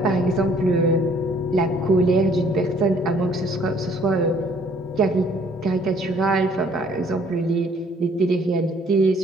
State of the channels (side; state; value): both; normal; correlation 0.60